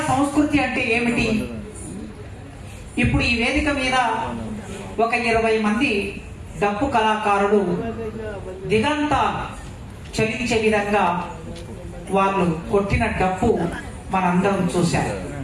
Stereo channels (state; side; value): identical; both; correlation 1.00